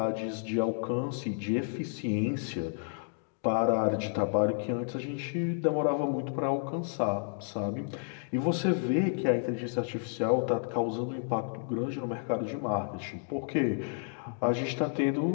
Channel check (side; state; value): right; silent; 57 dB below the other